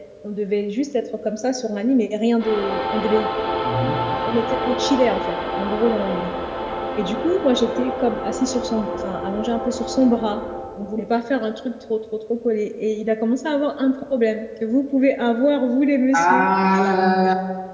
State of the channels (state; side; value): identical; both; correlation 1.00